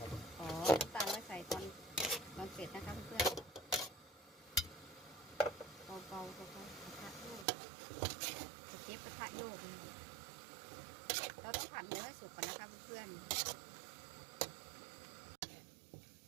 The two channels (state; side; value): drops out; left; at 7.5 s